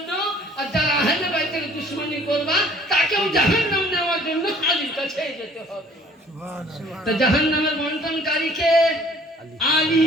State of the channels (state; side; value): normal; both; correlation 0.55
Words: আর যারা আহলে বাইতের দুশমনি করবা তাকেও জাহান্নাম নেওয়ার জন্য আলীর কাছে যেতে হবে। তো জাহান্নামের বন্টনকারী কে? আলী।